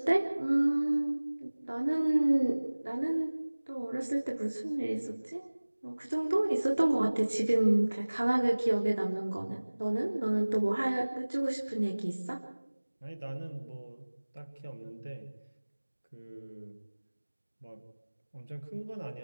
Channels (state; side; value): inverted; both; correlation -1.00